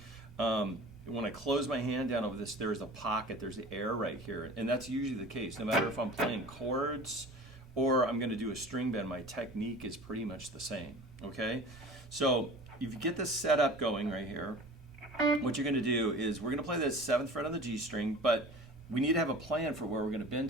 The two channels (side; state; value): both; normal; correlation 0.41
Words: When I close my hand down over this, there's a pocket, there's the air right here, and that's usually the case. No matter if I'm playing chords or I'm going to do a string bend, my technique is pretty much the same, okay? So if you get this set up going right here, what you're going to do is we're going to play the 7th fret on the G string, but we need to have a plan for where we're going to bend